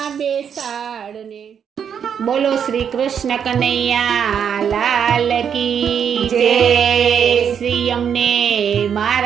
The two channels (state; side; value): quieter; left; 7.8 dB